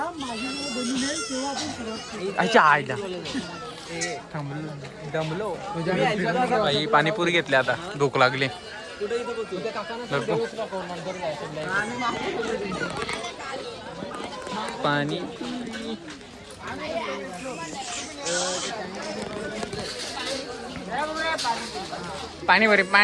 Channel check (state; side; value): identical; both; correlation 1.00